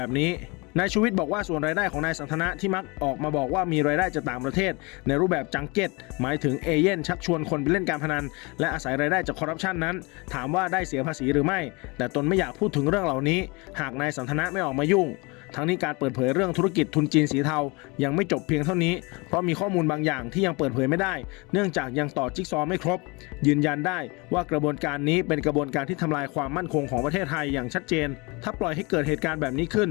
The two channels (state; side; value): quieter; right; 27.3 dB